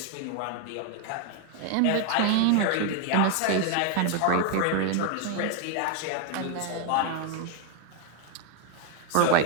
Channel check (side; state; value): both; different; correlation 0.01